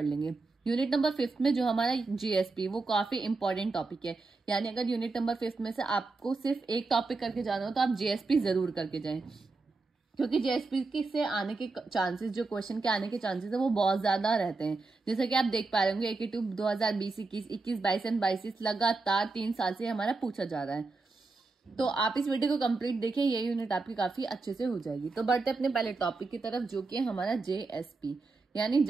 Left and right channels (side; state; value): left; quieter; 3.7 dB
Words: लेंगे। यूनिट नंबर 5 में जो हमारा जीएसपी वो काफी इंपॉर्टेंट टॉपिक है। यानी अगर यूनिट नंबर 5 में से आपको सिर्फ एक टॉपिक करके जाना हो तो आप जीएसपी जरूर करके जाएं, क्योंकि जेएसपी के से आने के चांसेस, जो क्वेश्चन के आने के चांसेस है वो बहुत ज्यादा रहते हैं। जैसे कि आप देख पा रहे होंगे AKT 2020, 21, 22 एंड 22 लगातार 3 साल से हमारा पूछा जा रहा है। तो आप इस वीडियो को कंप्लीट देखिए, ये यूनिट आपकी काफी अच्छे से हो जाएगी। तो बढ़ते अपने पहले टॉपिक की तरफ, जो कि है हमारा जेएसपी यानी